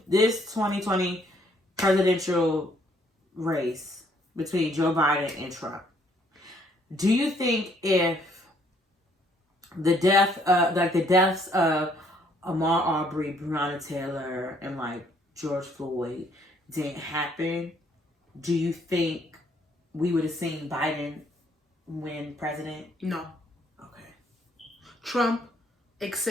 2020 presidential race between Joe Biden and Trump, do you think if the deaths of Ahmaud Arbery, Breonna Taylor, and like George Floyd didn't happen, do you think we would have seen Biden win president? No. Okay. Trump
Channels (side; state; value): both; normal; correlation 0.65